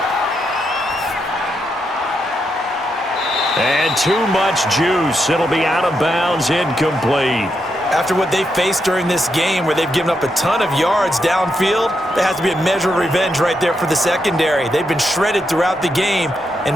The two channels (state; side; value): normal; both; correlation 0.82